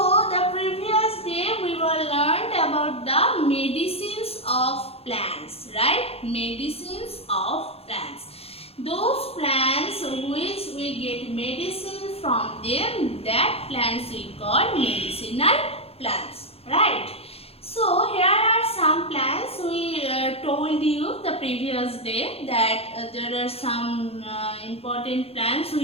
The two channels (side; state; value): right; late; 0.29 ms